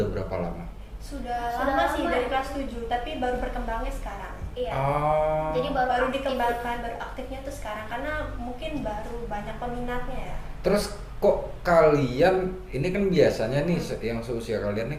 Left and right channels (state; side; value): identical; both; correlation 1.00